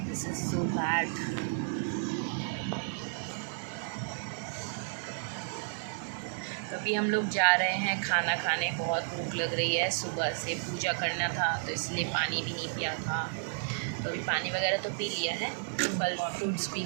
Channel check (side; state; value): left; silent; digital silence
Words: This is so bad. अभी हम लोग जा रहे हैं खाना खाने, बहुत भूख लग रही है। सुबह से पूजा करना था तो इसलिए पानी भी नहीं पिया था, तो अभी पानी वगैरह तो पी लिया है, फल फ्रूट्स भी